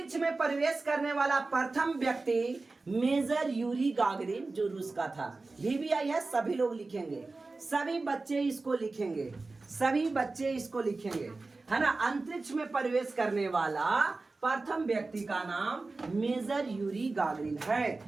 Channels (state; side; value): quieter; left; 3.6 dB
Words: में प्रवेश करने वाला प्रथम व्यक्ति मेजर यूरी गागरिन, जो रूस का था। VVI है, सभी लोग लिखेंगे, सभी बच्चे इसको लिखेंगे, सभी बच्चे इसको लिखेंगे, है ना। अंतरिक्ष में प्रवेश करने वाला प्रथम व्यक्ति का नाम मेजर यूरी गागरिन है,